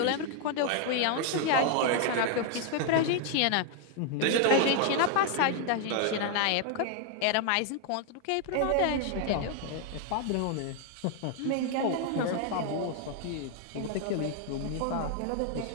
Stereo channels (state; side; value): different; both; correlation 0.00